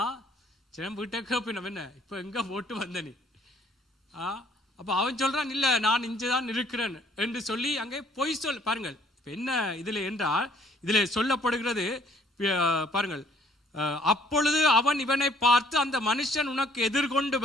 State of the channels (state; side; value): normal; both; correlation 0.61